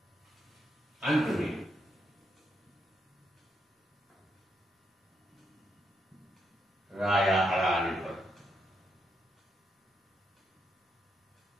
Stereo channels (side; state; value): both; normal; correlation 0.80